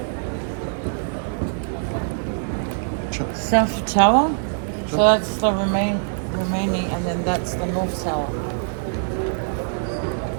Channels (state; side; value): silent; left; digital silence